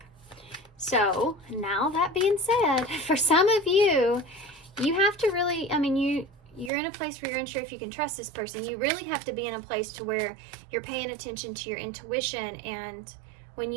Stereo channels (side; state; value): left; drops out; at 6.7 s